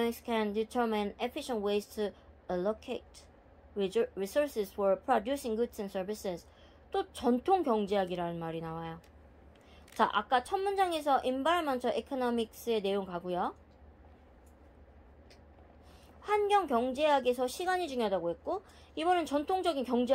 can determine efficient ways to allocate resources for producing goods and services. 또 전통 경제학이라는 말이 나와요. 자, 아까 첫 문장에서 environmental economics의 내용 가고요. 환경 경제학에서 시간이 중요하다고 했고, 이번엔 전통적인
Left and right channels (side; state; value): both; identical; correlation 1.00